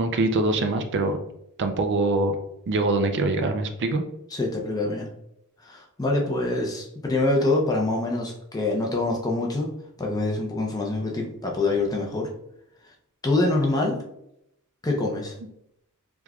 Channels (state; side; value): normal; both; correlation 0.42